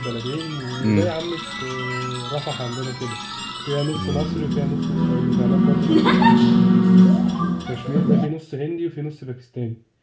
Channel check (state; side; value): identical; both; correlation 1.00